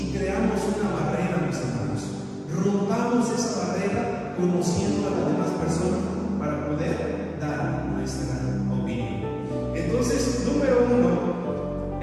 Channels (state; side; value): identical; both; correlation 1.00